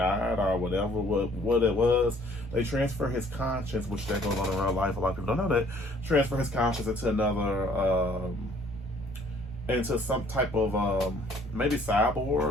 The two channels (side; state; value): both; normal; correlation 0.59